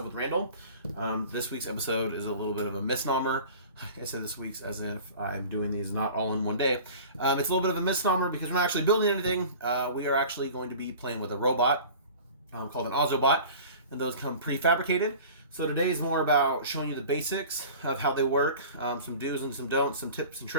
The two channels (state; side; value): inverted; both; correlation -0.41